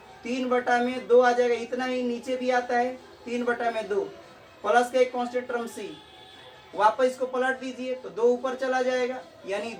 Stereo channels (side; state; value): both; identical; correlation 1.00